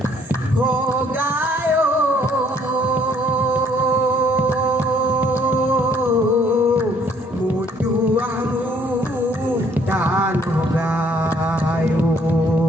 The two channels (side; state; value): both; normal; correlation 0.63